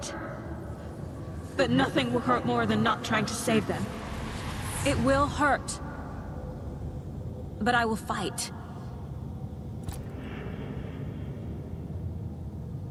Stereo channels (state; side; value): identical; both; correlation 1.00